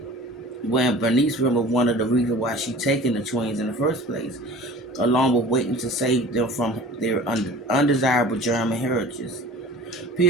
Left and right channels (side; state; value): both; normal; correlation 0.42